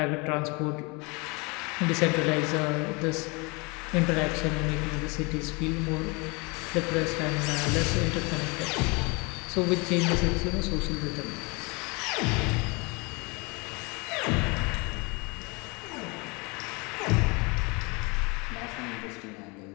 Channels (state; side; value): quieter; right; 28.6 dB